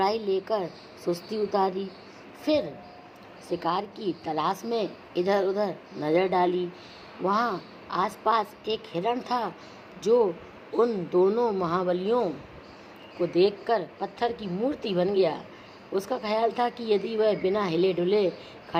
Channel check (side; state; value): both; identical; correlation 1.00